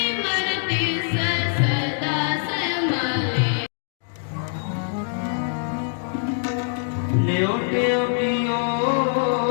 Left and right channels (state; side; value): silent; right; digital silence